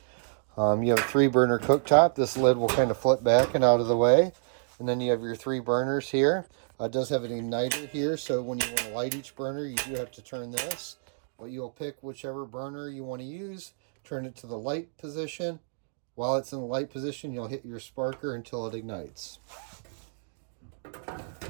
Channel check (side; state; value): left; silent; digital silence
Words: You have a 3-burner cooktop. This lid will kind of flip back and out of the way. And then you have your 3 burners here. It does have an igniter here, so when you want to light each burner, you do have to turn this. But you'll pick whichever burner you want to use, turn it to the light position. While it's in the light position, you'll hit your sparker until it ignites.